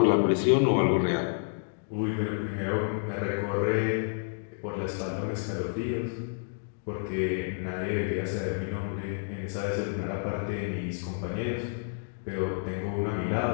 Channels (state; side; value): silent; right; digital silence